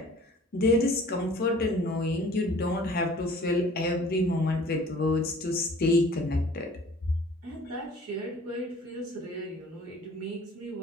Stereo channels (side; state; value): both; normal; correlation 0.50